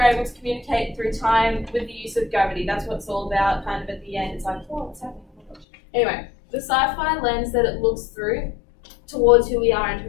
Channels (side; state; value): right; drops out; at 5.7 s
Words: able to communicate through time with the use of gravity. That's what it's all about. Kind of at the end, it's like, oh, what's happening? Oh my gosh. Anyway, the sci-fi lens that it looks through towards who we are and who